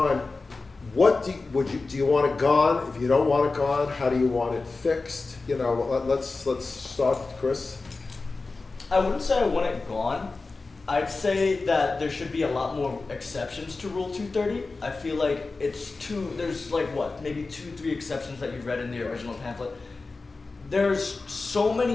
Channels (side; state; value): right; quieter; 3.8 dB